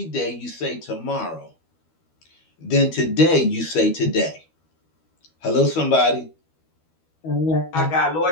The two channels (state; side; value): late; right; 12 ms